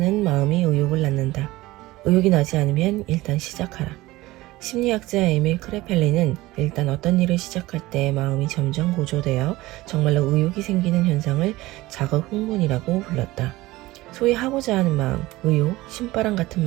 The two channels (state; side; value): quieter; left; 18.8 dB